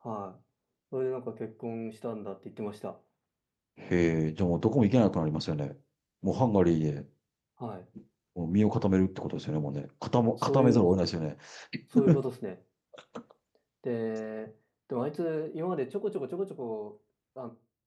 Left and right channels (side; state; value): both; identical; correlation 1.00